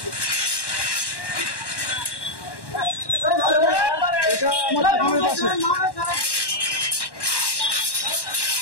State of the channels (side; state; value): right; late; 1.1 ms